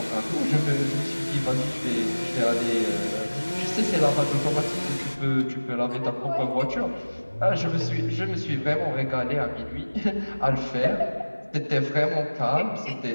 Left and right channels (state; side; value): inverted; both; correlation -1.00